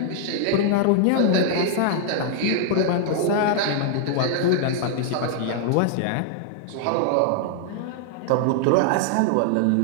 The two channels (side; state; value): both; different; correlation 0.00